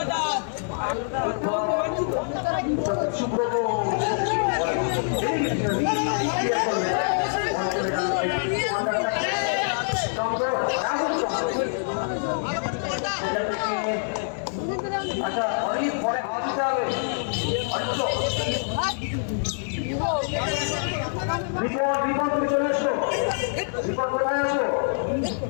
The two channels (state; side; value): silent; right; digital silence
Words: সুব্রত আচ্ছা অনেক পরে হাওয়া দিতে হবে রিপোর্ট তুমি চলে এসো রিপোর্ট কোথায় আছো